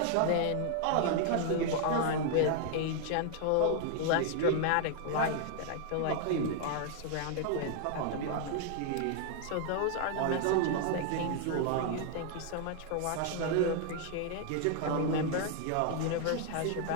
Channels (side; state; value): both; different; correlation 0.00